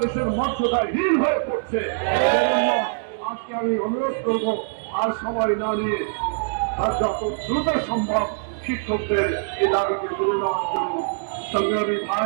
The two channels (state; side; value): silent; left; digital silence